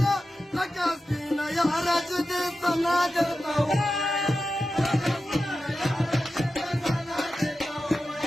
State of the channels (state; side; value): normal; both; correlation 0.92